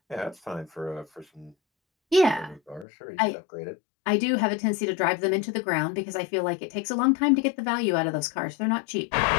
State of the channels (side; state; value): right; drops out; at 2.9 s